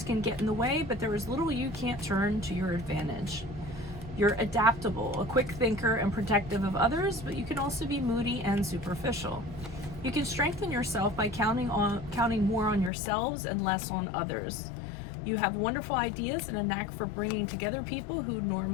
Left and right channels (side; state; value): right; drops out; at 12.9 s